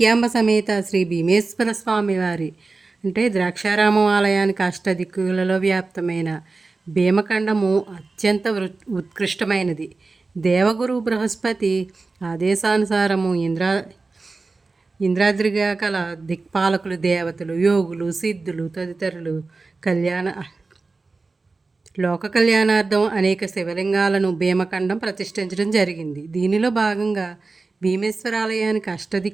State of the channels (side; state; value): left; quieter; 3.8 dB